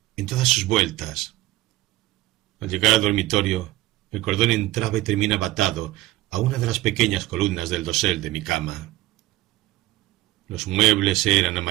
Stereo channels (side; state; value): left; quieter; 17.0 dB